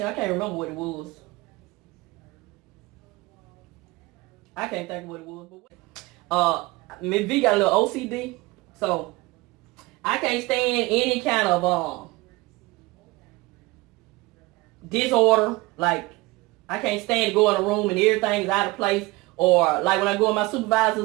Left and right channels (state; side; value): quieter; left; 22.1 dB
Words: I can't remember what it was. I can't think of what it was. But Miss V got a little OCD. So I can't stand any kind of disorder. Like, I can't stand to go in a room and everything is out of place. Or like when I go in my